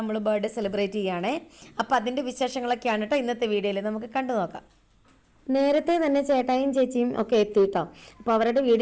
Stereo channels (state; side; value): identical; both; correlation 1.00